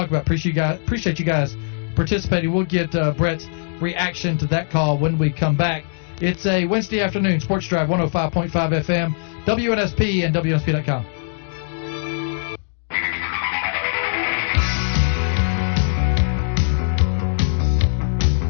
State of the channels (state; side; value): silent; right; digital silence